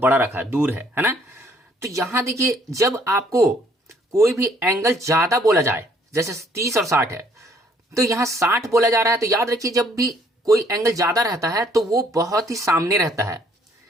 रखा है, दूर है ना। तो यहां देखिए जब आपको कोई भी एंगल ज्यादा बोला जाए, जैसे 30 और 60 है, तो यहां 60 बोला जा रहा है, तो याद रखिए जब भी कोई एंगल ज्यादा रहता है तो वो बहुत ही सामने रहता है,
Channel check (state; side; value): normal; both; correlation 0.63